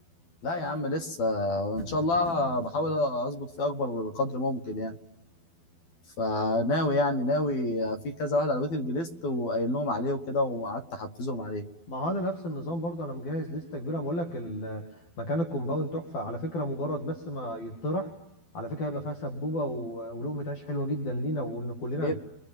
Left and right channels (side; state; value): right; late; 12 ms